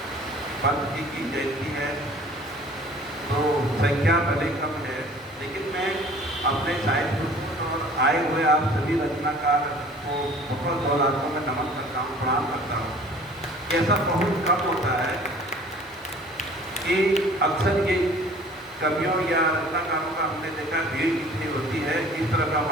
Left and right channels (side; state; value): both; normal; correlation 0.49